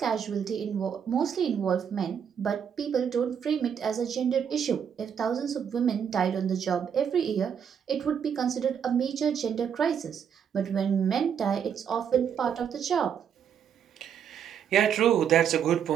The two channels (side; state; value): left; quieter; 8.0 dB